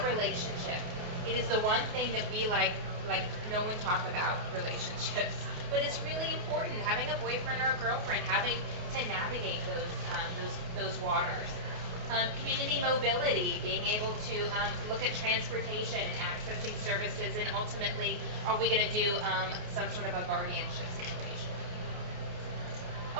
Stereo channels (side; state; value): left; late; 28 ms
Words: relationship. It is the one thing that we like no one talk about relationships, but it's really important. Having a boyfriend or a girlfriend, having to navigate those waters. Community mobility, being able to look at transportation and accessing services, and ultimately, are we going to do some sort of a guardianship situation?